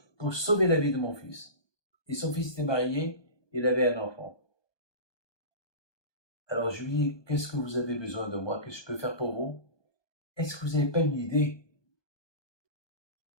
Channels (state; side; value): late; right; 1.2 ms